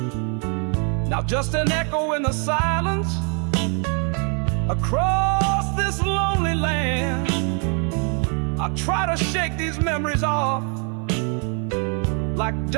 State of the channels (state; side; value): quieter; left; 38.5 dB